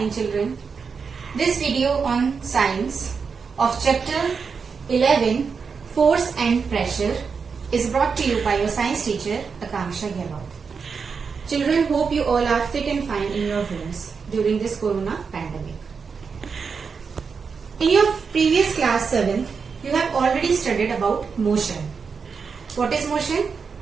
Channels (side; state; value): left; quieter; 5.6 dB